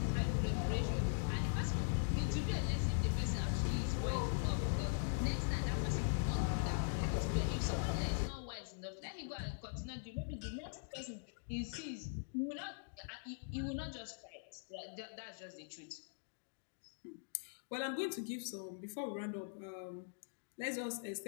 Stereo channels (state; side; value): silent; right; digital silence